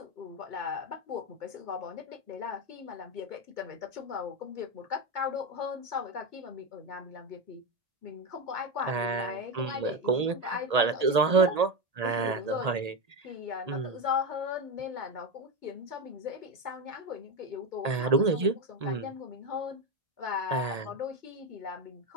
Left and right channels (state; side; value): late; left; 1.8 ms